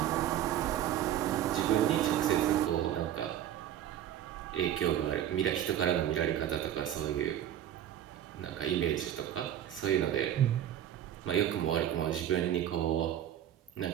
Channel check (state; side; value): quieter; left; 11.1 dB